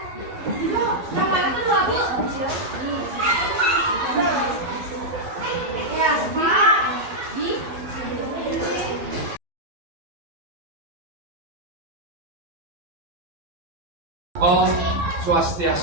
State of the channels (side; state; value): left; late; 12 ms